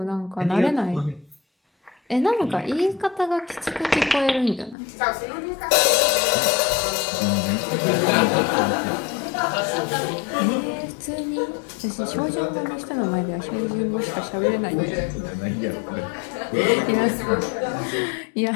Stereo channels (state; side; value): drops out; right; at 4.8 s